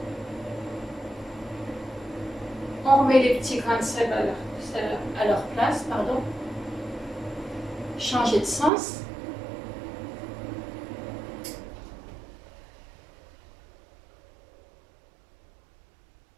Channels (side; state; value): left; drops out; at 8.7 s